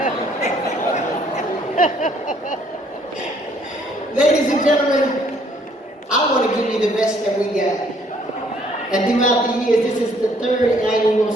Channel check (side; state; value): both; normal; correlation 0.64